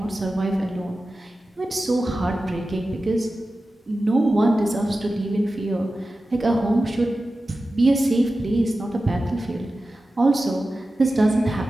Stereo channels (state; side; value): normal; both; correlation 0.94